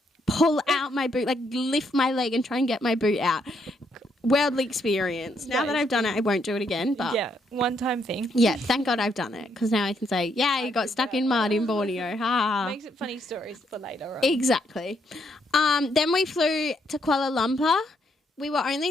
pull out my boot, like lift my leg and try and get my boot out. Worldly experience. Now that I've done it, I won't do it again. But Yeah, one-time thing. yeah, thank God I've done it because now I can say, yeah, you got stuck in mud in Borneo. Ha. Makes it funny stories for later on. Exactly. Then we flew to Kuala Lumpur. We were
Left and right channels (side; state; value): both; normal; correlation 0.74